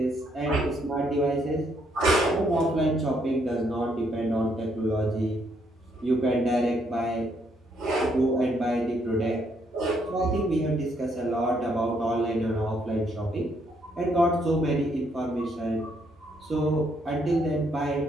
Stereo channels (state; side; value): normal; both; correlation 0.72